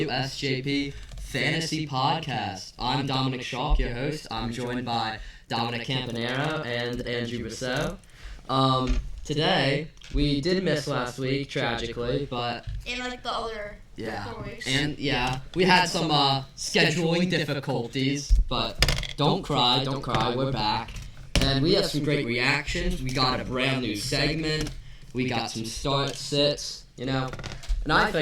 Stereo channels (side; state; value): both; identical; correlation 1.00